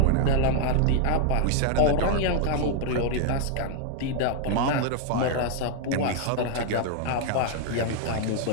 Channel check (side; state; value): both; different; correlation 0.00